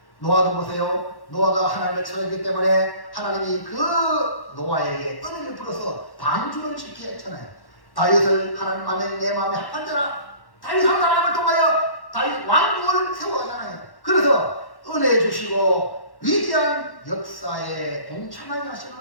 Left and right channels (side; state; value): right; late; 1.1 ms